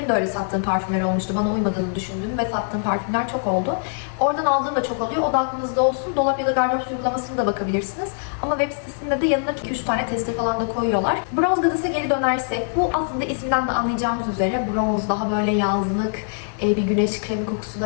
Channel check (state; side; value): silent; right; digital silence